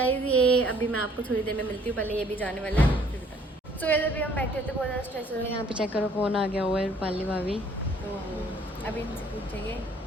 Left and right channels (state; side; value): normal; both; correlation 0.60